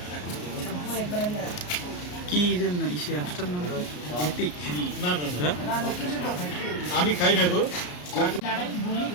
কি যেন ইসে অ্যাপসটার নাম এপিক? না না না, আমি খাই না গো।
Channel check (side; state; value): right; late; 34 ms